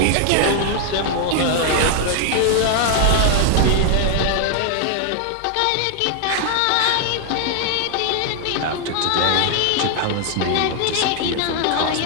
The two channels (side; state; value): both; different; correlation 0.00